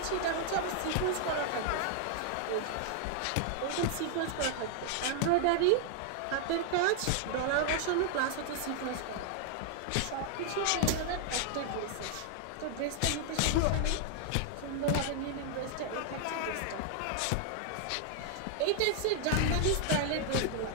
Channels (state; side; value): different; both; correlation 0.00